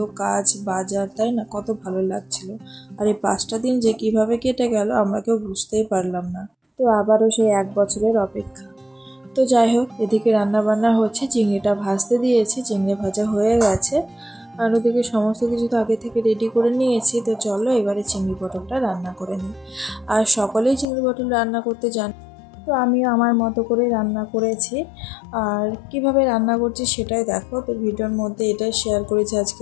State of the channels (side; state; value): right; drops out; at 20.9 s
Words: কাজ বাজার, তাই না? কত ভালো লাগছিল। আর এই 5টা দিন যে কিভাবে কেটে গেল আমরা কেউ বুঝতেই পারলাম না। তো আবারও সেই 1 বছরের অপেক্ষা। তো যাই হোক, এদিকে রান্না বান্না হচ্ছে, চিংড়িটা ভাজতে দিয়েছি, চিংড়ি ভাজা হয়ে গেছে। আর ওদিকে সমস্ত কিছু তো আগে থেকে রেডি করে নিয়েছি। তো চলো এবারে চিংড়ি পটলটা রান্না করে নিই। আর সকলেই চিংড়ি পটল রান্না করতে জান, তো আমিও আমার মতো করে রান্না করেছি। আর কিভাবে রান্না করছি সেটাই দেখো। তো ভিডিওর মধ্যে এটাই শেয়ার করেছি